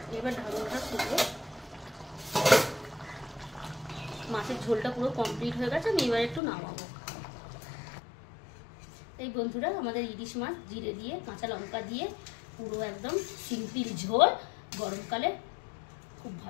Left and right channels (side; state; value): right; drops out; at 6.4 s